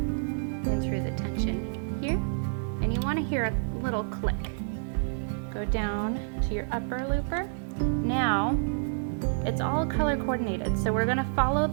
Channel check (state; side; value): silent; left; digital silence